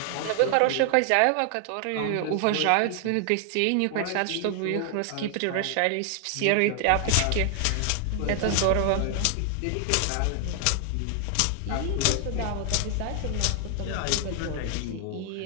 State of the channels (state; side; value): different; both; correlation 0.00